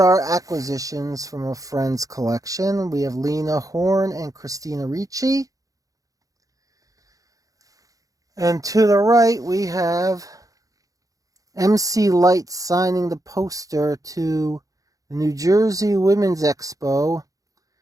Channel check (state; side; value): late; left; 0.17 ms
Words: acquisitions from a friend's collection. We have Lena Horne and Christina Ricci. And to the right, we have MC Light signing the poster to the New Jersey Women's Expo.